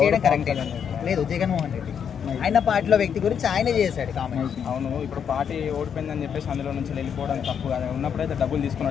చేయడం కరెక్టే లేదు. జగన్మోహన్ రెడ్డి ఆయన పార్టీలో వ్యక్తి గురించి ఆయన చేశాడు కామెంట్. అవును, ఇప్పుడు పార్టీ ఓడిపోయిందని చెప్పేసి అందులో నుంచి వెళ్ళిపోవడం తప్పు కదా. ఉన్నప్పుడైతే డబ్బులు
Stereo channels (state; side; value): quieter; right; 7.7 dB